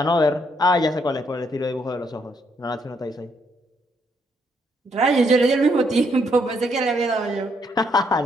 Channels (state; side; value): normal; both; correlation 0.73